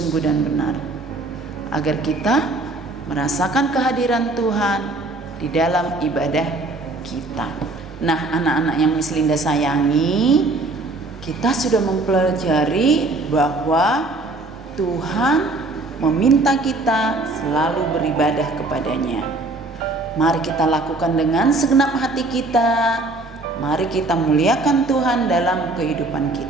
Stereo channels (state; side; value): quieter; left; 3.1 dB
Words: dan benar, agar kita merasakan kehadiran Tuhan di dalam ibadah kita. Nah, anak-anak yang Miss Linda sayangi, kita sudah mempelajari bahwa Tuhan meminta kita selalu beribadah kepadanya. Mari kita lakukan dengan segenap hati kita. Mari kita muliakan Tuhan dalam kehidupan